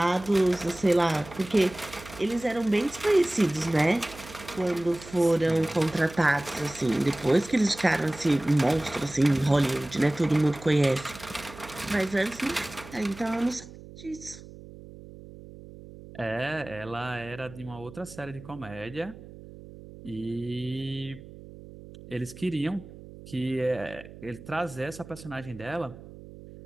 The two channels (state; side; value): noise; right; hum, 17 dB below the sound